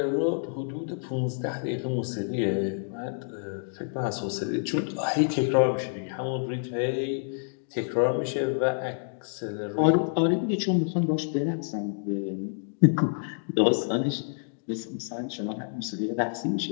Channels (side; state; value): right; silent; digital silence